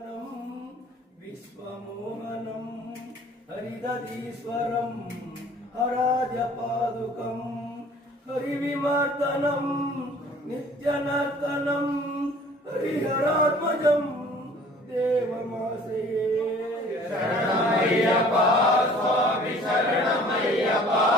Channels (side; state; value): both; normal; correlation 0.51